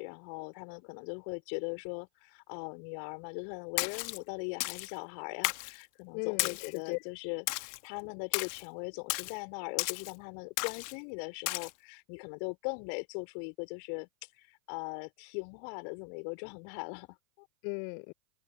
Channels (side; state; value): right; silent; 50 dB below the other